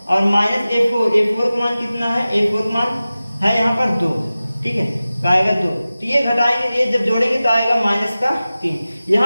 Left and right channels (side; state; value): both; inverted; correlation -0.96